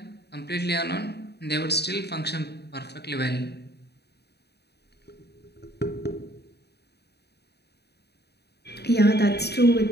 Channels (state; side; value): late; right; 0.48 ms